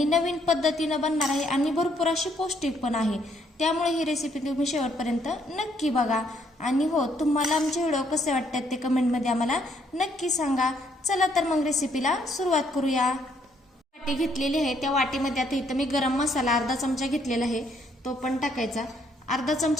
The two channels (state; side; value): normal; both; correlation 0.70